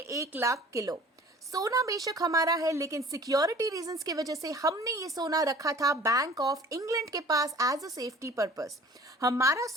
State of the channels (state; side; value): normal; both; correlation 0.47